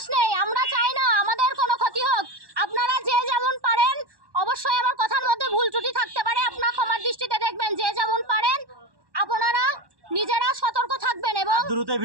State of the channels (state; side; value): late; left; 1.1 ms